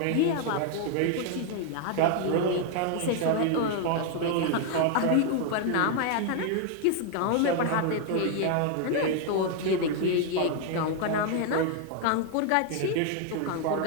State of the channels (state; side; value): different; both; correlation 0.00